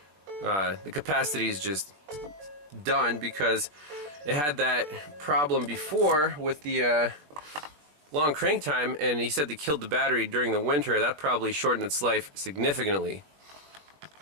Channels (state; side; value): late; left; 20 ms